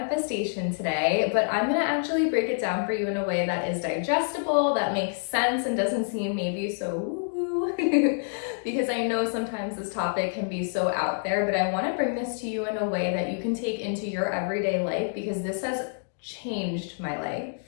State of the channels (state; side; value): silent; right; digital silence